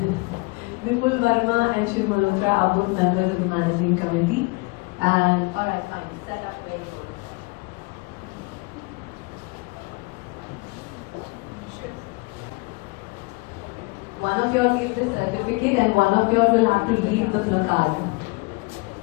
Vipul Verma and Shiv Malhotra are both members of the managing committee. And alright, fine, set up very good. One of you all give the certificate and one of you all will have to read the placard.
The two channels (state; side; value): quieter; right; 26.6 dB